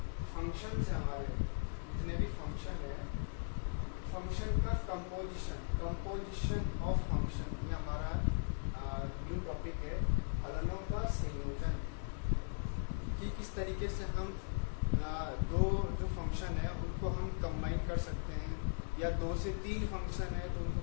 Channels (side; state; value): right; silent; digital silence